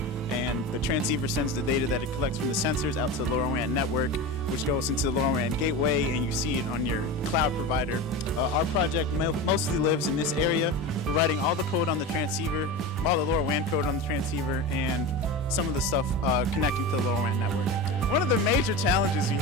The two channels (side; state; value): both; normal; correlation 0.26